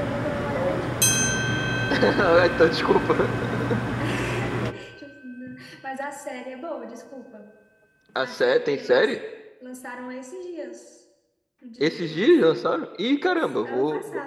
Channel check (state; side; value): identical; both; correlation 1.00